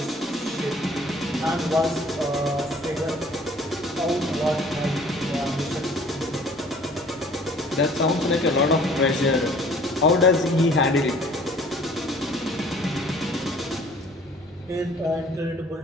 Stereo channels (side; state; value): both; normal; correlation 0.53